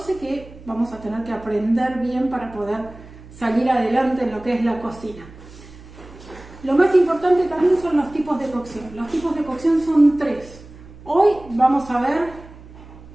que vamos a tener que aprender bien para poder salir adelante en lo que es la cocina. Lo más importante también son los tipos de cocción. Los tipos de cocción son 3. Hoy vamos a ver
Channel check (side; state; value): right; noise; hum, 19 dB below the sound